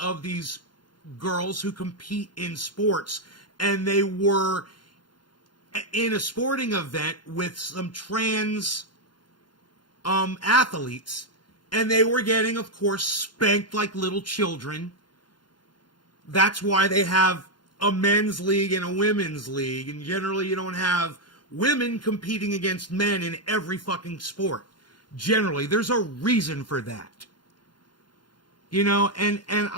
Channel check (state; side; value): late; right; 0.71 ms